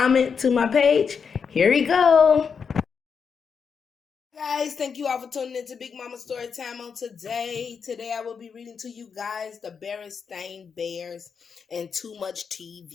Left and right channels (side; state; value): right; quieter; 6.2 dB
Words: to my page. Here we go. Guys, thank you all for tuning into Big Mama Story Time on today. Today I will be reading to you guys the Berenstain Bears and Too Much